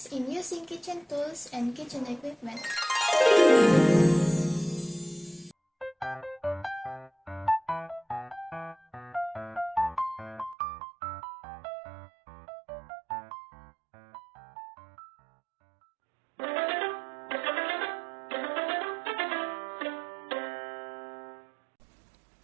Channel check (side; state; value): left; drops out; at 10.6 s